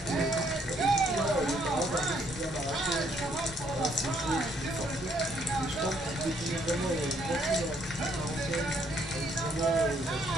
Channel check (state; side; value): normal; both; correlation 0.69